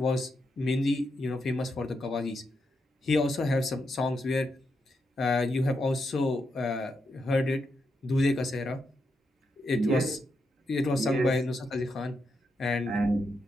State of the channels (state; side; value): normal; both; correlation 0.83